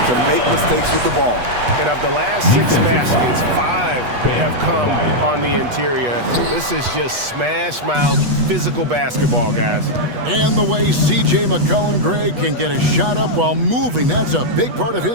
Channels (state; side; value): late; left; 8.2 ms